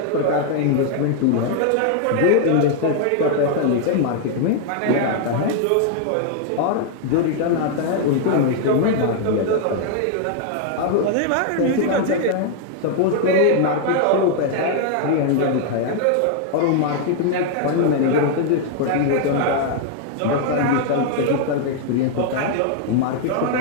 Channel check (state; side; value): different; both; correlation 0.00